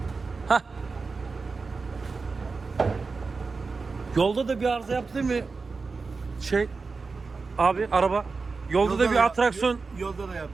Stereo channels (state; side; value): quieter; left; 4.4 dB